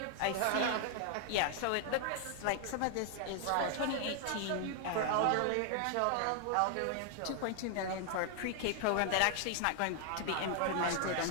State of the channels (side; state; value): both; different; correlation 0.00